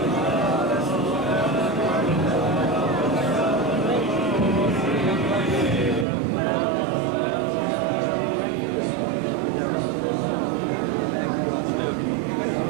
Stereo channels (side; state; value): left; drops out; at 6.1 s